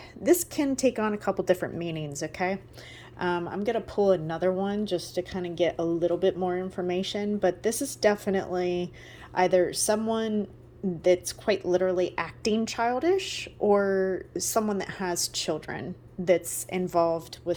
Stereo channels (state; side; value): identical; both; correlation 1.00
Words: this can take on a couple different meanings, okay? I'm going to pull another one just to kind of get a little bit more information, but this is definitely either someone that's quite literally acting childish or someone that has children that's involved